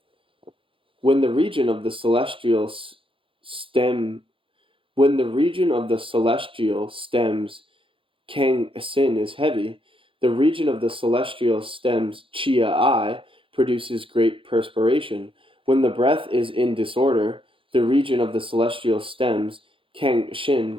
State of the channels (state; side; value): late; left; 0.25 ms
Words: When the region of the celestial stems Kang Sin is heavy, the region of the celestial stems Chia I produces great perspiration. When the breath is in disorder, the region of the celestial stems Kang Shin